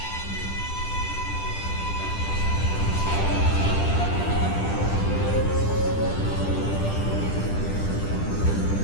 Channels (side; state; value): right; late; 10 ms